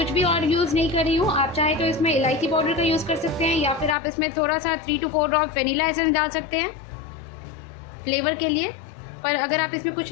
भी और यूज़ नहीं कर रही हूँ। आप चाहे तो इसमें इलायची पाउडर का यूज़ कर सकते हैं या फिर आप इसमें थोड़ा सा 3 to 4 ड्रॉप वनीला एसेंस डाल सकते हैं फ्लेवर के लिए। पर अगर आप इसमें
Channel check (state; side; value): drops out; right; at 4.0 s